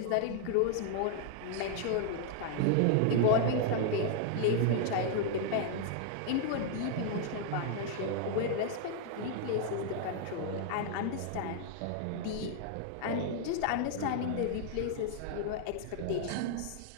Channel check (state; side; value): different; both; correlation 0.00